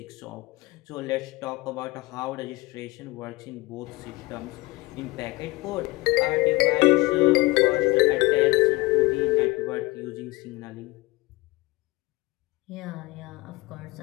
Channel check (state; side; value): quieter; right; 22.3 dB